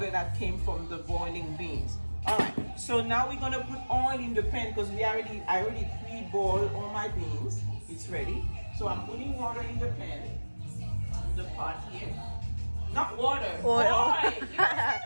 that came from the boiling beans. All right, so now we're gonna put oil in the pan because I already pre-boiled all my beans. It's ready. So I'm putting water in the pan, the pot here. Not water, oil.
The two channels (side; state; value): both; inverted; correlation -1.00